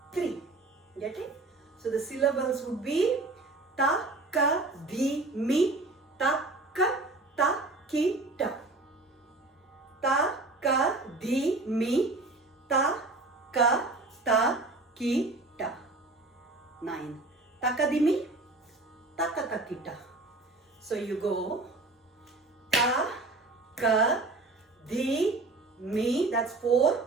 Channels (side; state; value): left; quieter; 3.2 dB